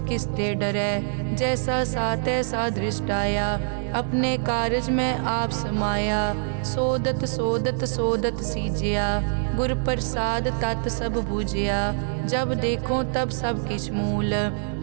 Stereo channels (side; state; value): left; silent; digital silence